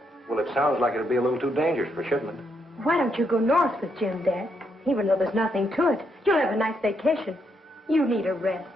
Well, it sounds like it'd be a little too dangerous for shipment. Why don't you go north with Jim, Dad? Even though there's nothing to it, you'll have a nice vacation. You need a rest.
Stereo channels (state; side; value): normal; both; correlation 0.77